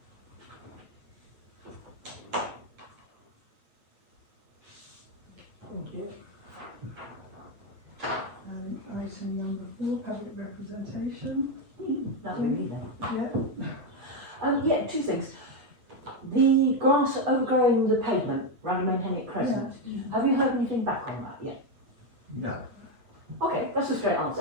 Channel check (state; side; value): late; left; 8.5 ms